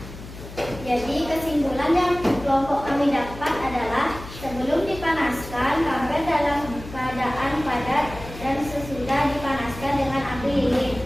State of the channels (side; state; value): left; noise; hum, 14 dB below the sound